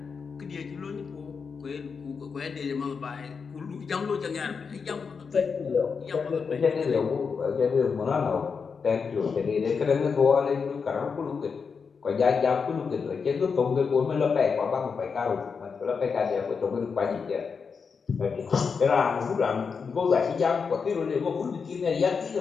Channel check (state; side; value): quieter; right; 5.6 dB